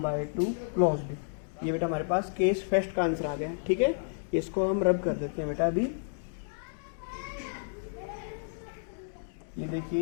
क्लोज्ड। ये बेटा हमारे पास केस फर्स्ट का आंसर आ गया, ठीक है। इसको हम रब कर देते हैं बेटा अभी। ये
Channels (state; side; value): silent; right; digital silence